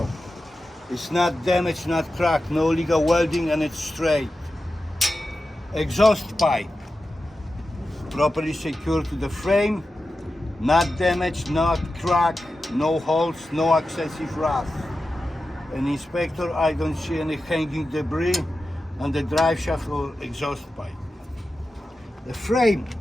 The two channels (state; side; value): normal; both; correlation 0.92